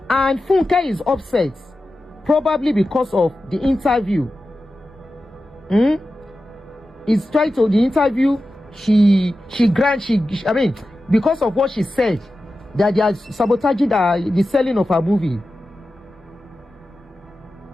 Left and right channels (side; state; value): both; normal; correlation 0.93